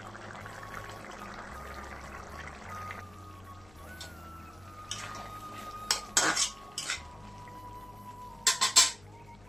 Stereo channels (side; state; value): left; noise; hum, 23 dB below the sound